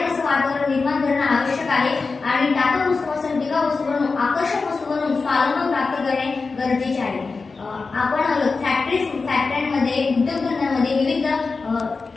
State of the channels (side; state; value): right; quieter; 4.3 dB